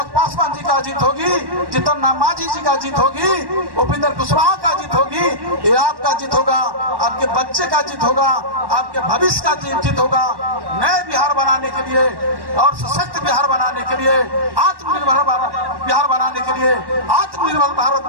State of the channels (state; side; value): late; left; 1.1 ms